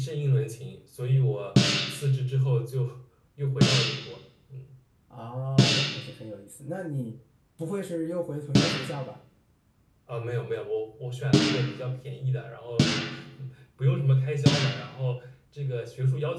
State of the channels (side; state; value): both; identical; correlation 1.00